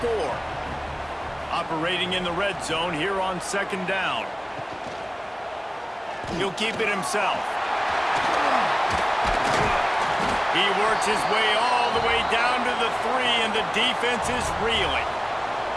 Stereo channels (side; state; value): both; identical; correlation 1.00